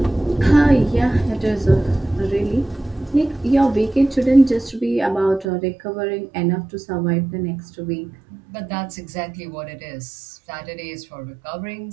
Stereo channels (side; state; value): left; drops out; at 5.5 s